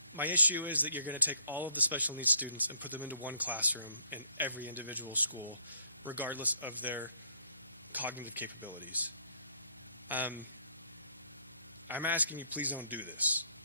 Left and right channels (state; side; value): inverted; both; correlation -0.67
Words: my issue is that you're going to take all of the special needs students and put them into one classroom in every individual school, regardless of their cognitive capabilities. I'm asking you, please don't do this.